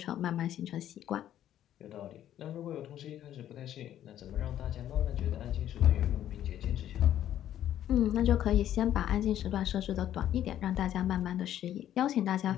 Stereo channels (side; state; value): right; quieter; 11.5 dB